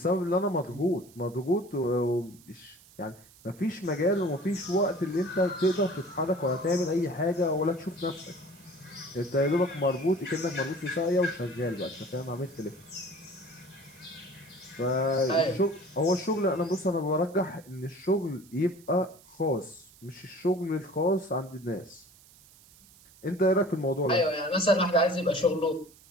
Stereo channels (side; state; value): right; noise; hiss, 25 dB below the sound